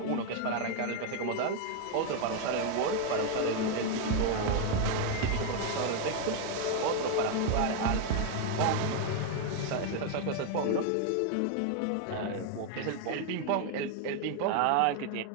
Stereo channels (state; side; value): different; both; correlation 0.01